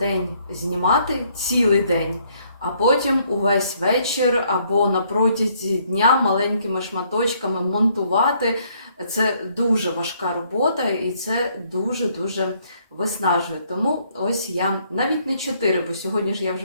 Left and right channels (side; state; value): both; inverted; correlation -0.67